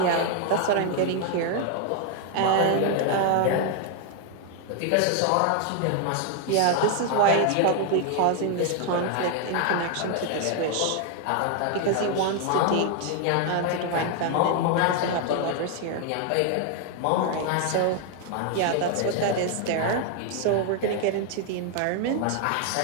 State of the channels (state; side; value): different; both; correlation 0.00